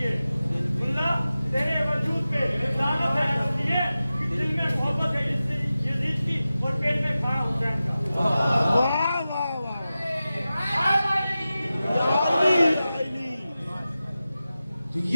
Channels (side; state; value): both; inverted; correlation -0.94